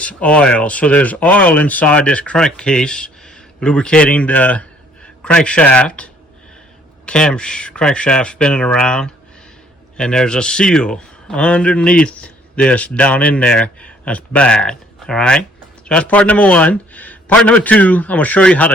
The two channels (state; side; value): normal; both; correlation 0.61